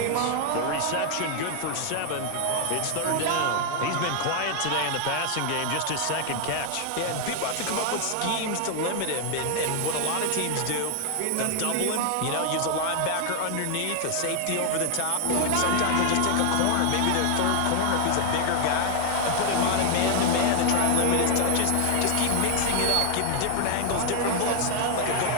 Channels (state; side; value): different; both; correlation 0.00